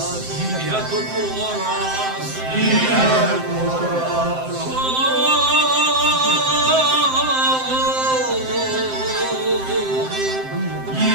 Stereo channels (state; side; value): late; left; 7.7 ms